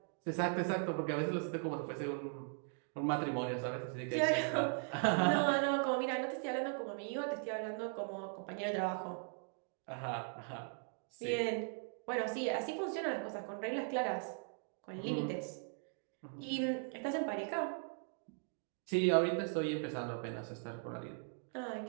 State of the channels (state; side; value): silent; left; 52 dB below the other